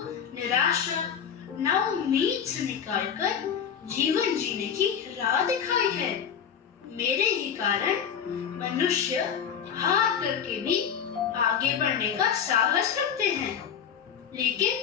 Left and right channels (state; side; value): quieter; right; 7.8 dB